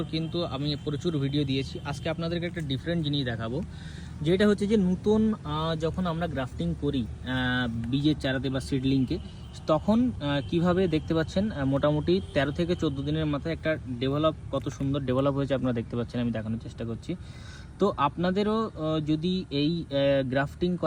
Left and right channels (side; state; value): both; identical; correlation 1.00